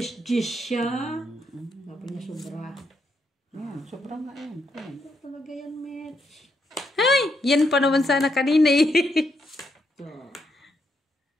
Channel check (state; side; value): normal; both; correlation 0.79